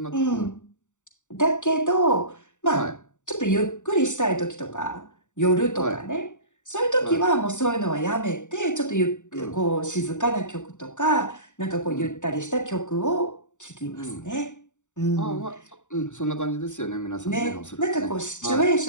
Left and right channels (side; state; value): right; late; 0.85 ms